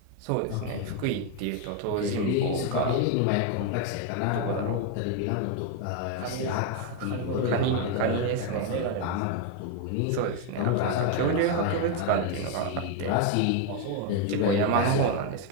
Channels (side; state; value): both; different; correlation 0.01